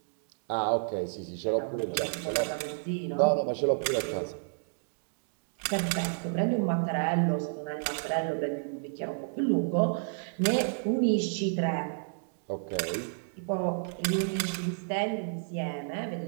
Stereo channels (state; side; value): silent; left; digital silence